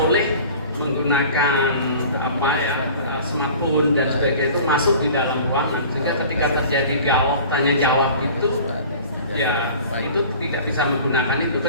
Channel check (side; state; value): both; inverted; correlation -0.43